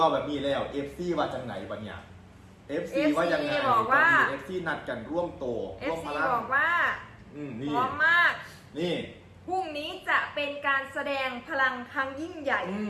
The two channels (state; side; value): identical; both; correlation 1.00